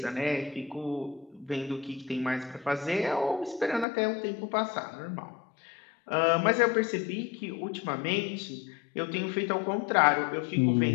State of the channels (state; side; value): drops out; right; at 3.9 s